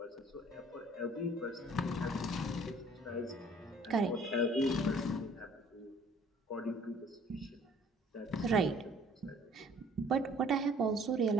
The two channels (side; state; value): both; normal; correlation 0.55